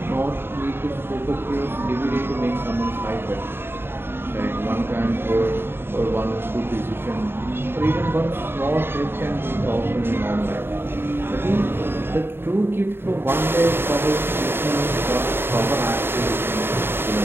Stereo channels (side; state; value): left; late; 0.11 ms